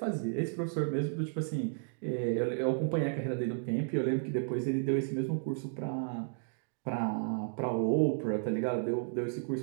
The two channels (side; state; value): left; silent; digital silence